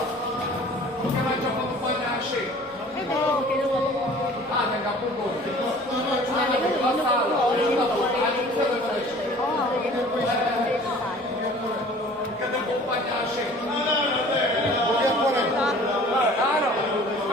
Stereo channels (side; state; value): both; normal; correlation 0.48